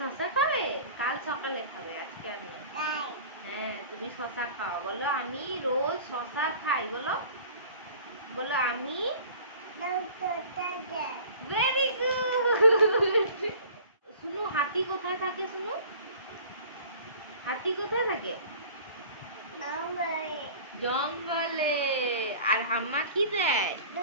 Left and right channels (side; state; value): both; inverted; correlation -0.44